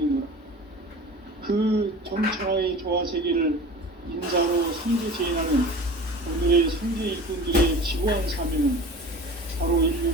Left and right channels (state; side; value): normal; both; correlation 0.38